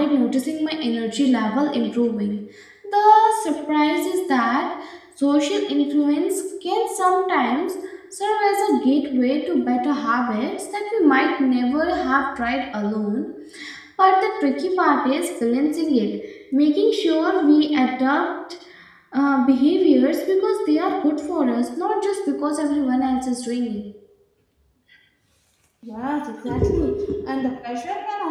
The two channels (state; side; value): identical; both; correlation 1.00